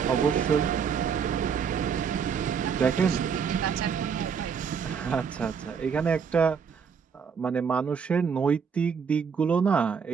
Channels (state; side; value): quieter; left; 6.5 dB